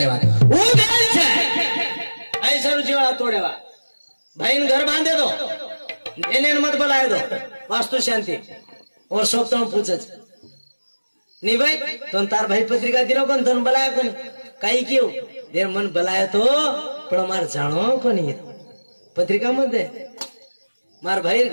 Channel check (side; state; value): both; inverted; correlation -1.00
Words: वो बेल છે ऐसा रुचिवाड़ा तोड़ेवा भाई घर बांधे दो इन्हें मत बुलाए दो वास्तु शांति और सब तो पूछे नहीं भाई तुम तार भाई पत्रिका दिलो कौन तुम बुलाया कौन कई क्यों देर मन बुलाया तो पण मार जानो कोनी पत्रिका मत दे मार भाई